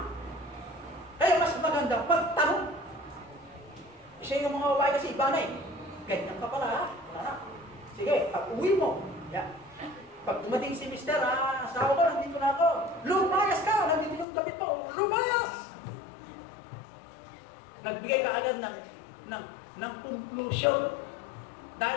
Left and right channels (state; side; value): drops out; right; at 14.2 s